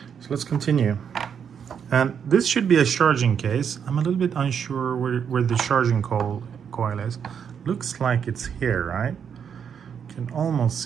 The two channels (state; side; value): quieter; left; 7.5 dB